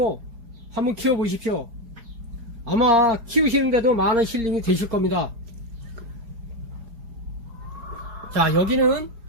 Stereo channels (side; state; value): left; late; 4.8 ms